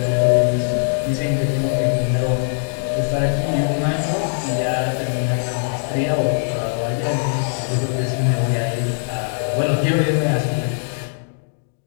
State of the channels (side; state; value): right; silent; digital silence